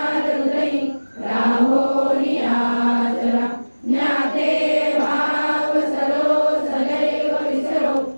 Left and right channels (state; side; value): inverted; both; correlation -1.00